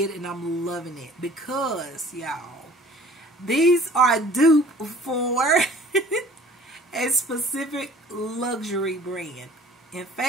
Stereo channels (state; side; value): normal; both; correlation 0.50